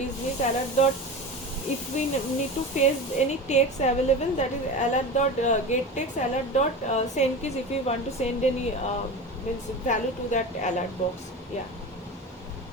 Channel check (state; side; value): normal; both; correlation 0.29